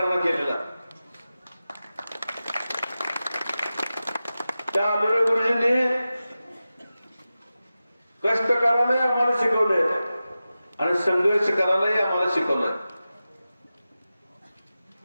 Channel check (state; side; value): inverted; both; correlation -0.94